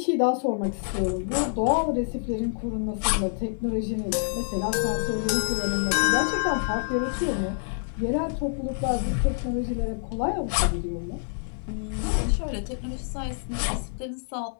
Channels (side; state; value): right; silent; 60 dB below the other